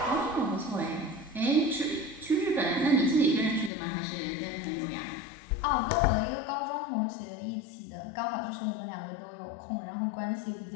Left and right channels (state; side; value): drops out; right; at 3.7 s